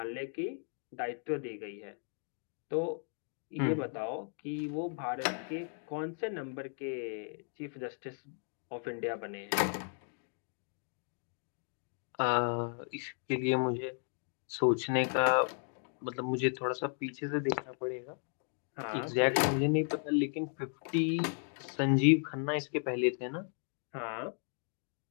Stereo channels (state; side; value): silent; right; 54 dB below the other